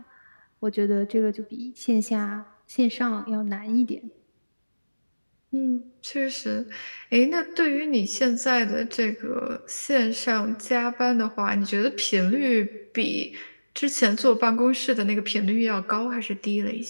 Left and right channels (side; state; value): both; inverted; correlation -1.00